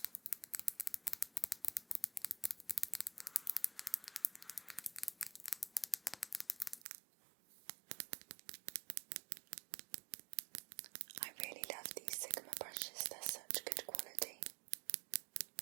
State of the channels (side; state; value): left; drops out; at 6.9 s